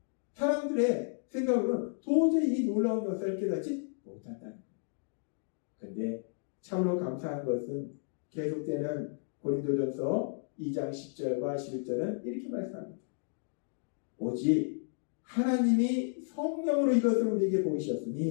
사람들의 생각으로는 도저히 이 놀라운 역사를 깨닫지 못한다는 거예요. 그런데 참으로 감사한 것은 계속되는 고린도전서 2장 10절과 11절은 이렇게 말씀합니다. 오직 하나님이 성령으로 이것을 우리에게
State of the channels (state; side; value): silent; right; digital silence